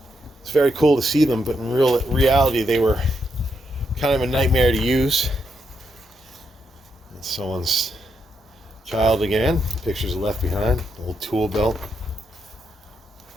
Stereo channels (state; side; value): normal; both; correlation 0.80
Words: It's very cool to see them, but in reality they were kind of a nightmare to use. It's someone's child again. Pictures left behind. Old tool belt.